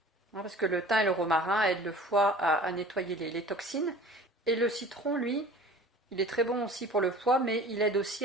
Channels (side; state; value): both; normal; correlation 0.43